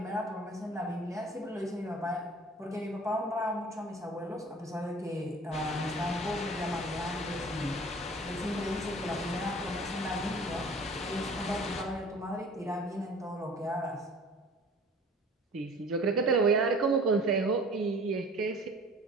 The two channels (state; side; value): normal; both; correlation 0.47